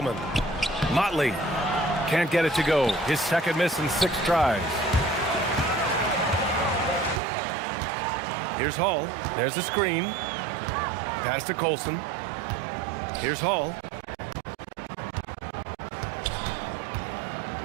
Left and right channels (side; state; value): left; drops out; at 7.2 s